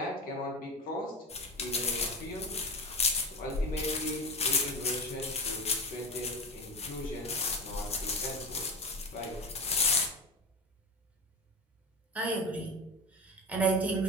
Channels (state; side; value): normal; both; correlation 0.24